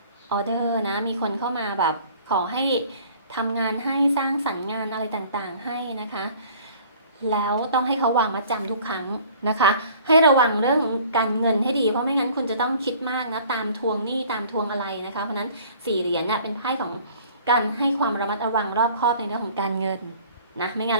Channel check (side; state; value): both; inverted; correlation -0.51